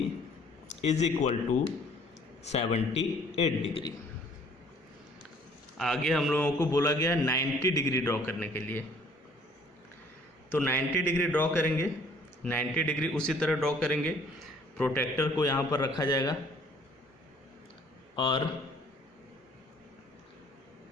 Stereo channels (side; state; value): both; normal; correlation 0.57